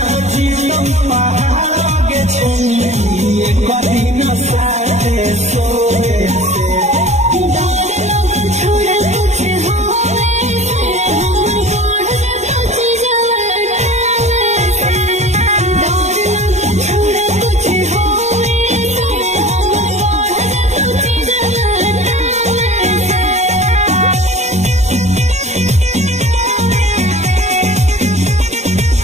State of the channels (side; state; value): left; late; 0.33 ms